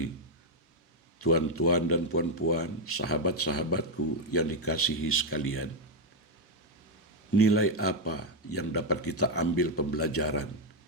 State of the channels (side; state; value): both; normal; correlation 0.03